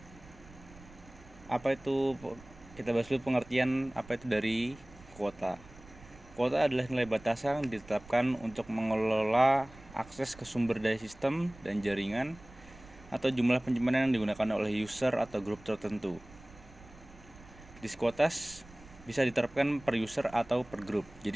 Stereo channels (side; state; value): right; noise; rumble, 21 dB below the sound